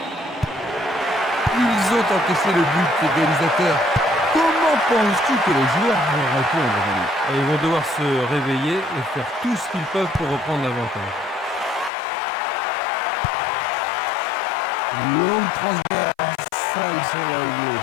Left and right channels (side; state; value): right; drops out; at 11.9 s